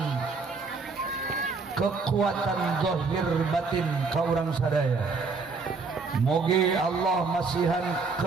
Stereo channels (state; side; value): quieter; left; 4.4 dB